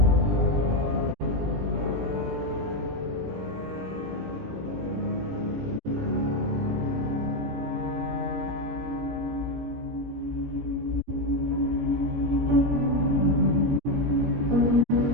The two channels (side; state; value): left; late; 17 ms